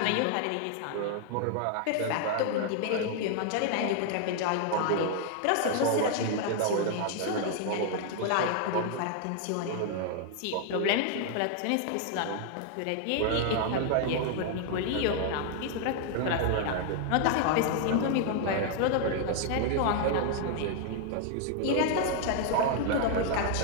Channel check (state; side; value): different; both; correlation 0.00